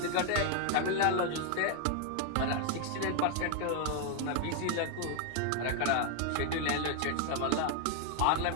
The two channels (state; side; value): different; both; correlation 0.00